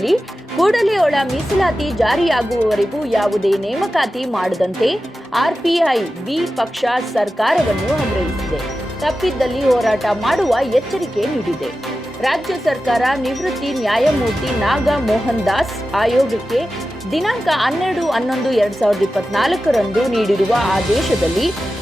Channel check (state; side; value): normal; both; correlation 0.93